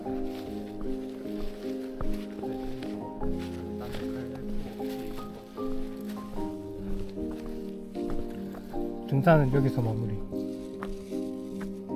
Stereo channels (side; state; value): both; identical; correlation 1.00